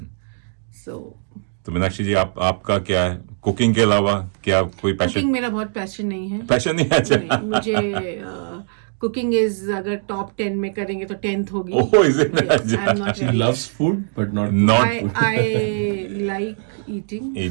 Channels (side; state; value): left; silent; digital silence